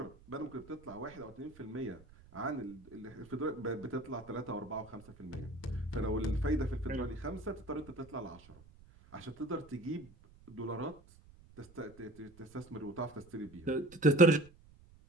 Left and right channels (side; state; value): right; noise; rumble, 23 dB below the sound